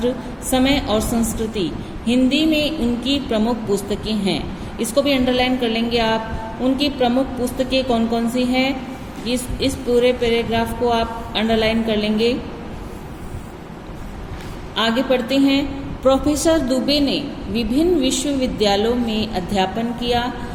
समय और संस्कृति, हिंदी में उनकी प्रमुख पुस्तकें हैं। इसको भी अंडरलाइन कर लेंगे आप। उनकी प्रमुख पुस्तकें कौन कौन सी हैं, इस पूरे पैराग्राफ को आप अंडरलाइन कर लेंगे। आगे पढ़ते हैं। प्रोफेसर दुबे ने विभिन्न विश्वविद्यालयों में अध्यापन किया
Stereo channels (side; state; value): both; identical; correlation 1.00